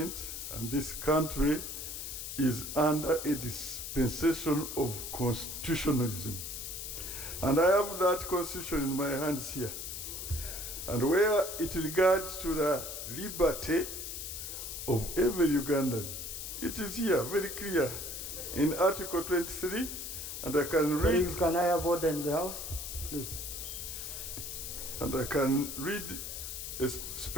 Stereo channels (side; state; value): left; noise; hiss, 7 dB below the sound